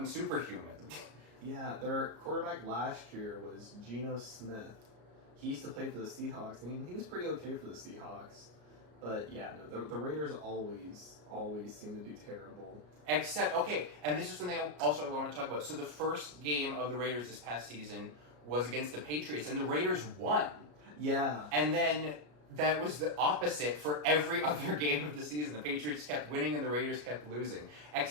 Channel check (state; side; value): late; left; 33 ms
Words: superhuman. Yeah, their quarterback last year was Geno Smith. He used to play for the Seahawks, and he was pretty okay for the Seahawks. But yeah, no, the Raiders always seem to do terrible. Except, okay, and this is something I want to talk about. So the first game of the Raiders this past season was against the Patriots, and the Raiders won. Yeah. And then that was the opposite for every other game of the season. The Patriots kept winning, and the Raiders kept losing.